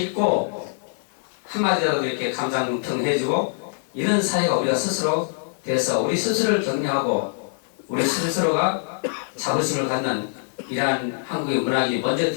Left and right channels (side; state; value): right; silent; digital silence